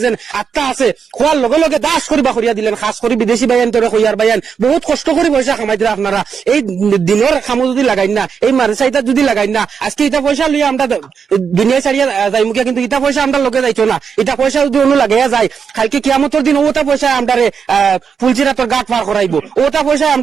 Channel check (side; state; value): left; quieter; 6.5 dB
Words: যেন আত্মা আছে, খোয়ার লগে লগে দাস করিবা করিয়া দিলেন। খাস করে বিদেশি বাইন তোরে কইয়ার বাইন বহুত কষ্ট করে পয়সা কামাই দিলে। আপনারা এই দিনের খামো যদি লাগাই না, এই মাদ্রাসা যদি লাগাই না, আজকে এটা পয়সা লইয়া আমরা দুনিয়া ছাড়িয়া যাই মুখিয়া, কিন্তু এটা পয়সা আমরা লগে যাইতো না। এটা পয়সা যদি অন্য লাগাইয়া যায় কালকে কিয়ামতের দিন ওটা পয়সা আমরারে ফুলচিরাতর গাট পার করাইবো, ওটা পয়সা